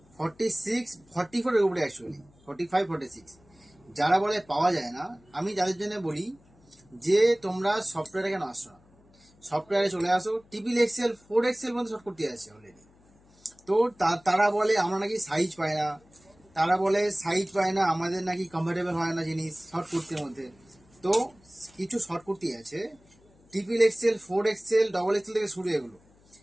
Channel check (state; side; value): noise; left; hum, 30 dB below the sound